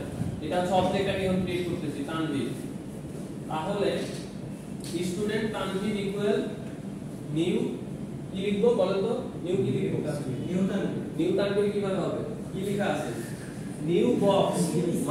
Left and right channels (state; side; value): identical; both; correlation 1.00